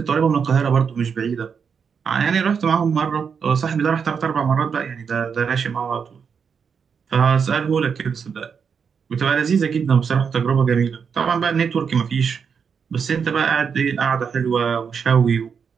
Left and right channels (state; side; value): quieter; left; 6.5 dB